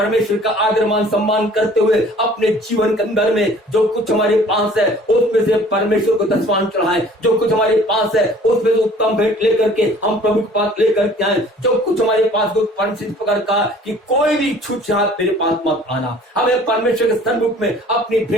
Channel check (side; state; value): both; normal; correlation 0.51